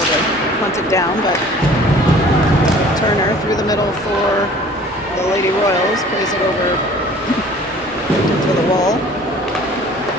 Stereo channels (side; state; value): both; normal; correlation 0.49